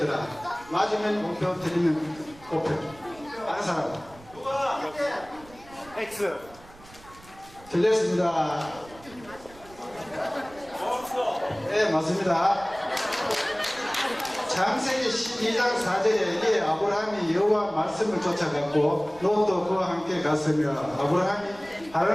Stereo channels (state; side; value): noise; right; rumble, 22 dB below the sound